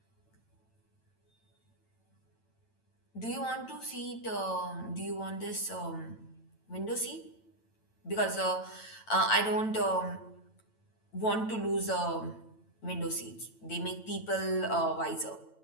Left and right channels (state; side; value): late; right; 9.0 ms